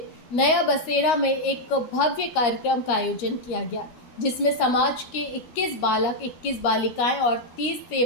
नया बसेरा में एक भव्य कार्यक्रम का आयोजन किया गया, जिसमें समाज के 21 बालक, 21 बालिकाएं और 30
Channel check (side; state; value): right; late; 13 ms